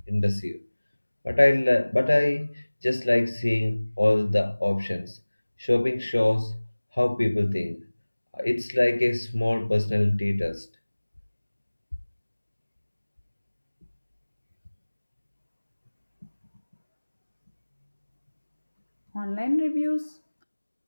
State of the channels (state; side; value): inverted; both; correlation -1.00